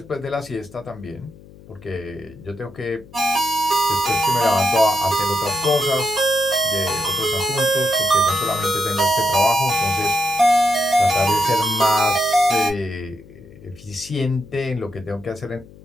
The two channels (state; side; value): noise; left; hum, 21 dB below the sound